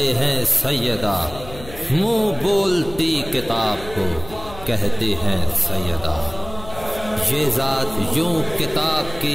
हैं सैयदा, मुंह बोलती किताब को कहते हैं सैयदा। ये ज़ात यूं किताब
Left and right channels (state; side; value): noise; left; hum, 16 dB below the sound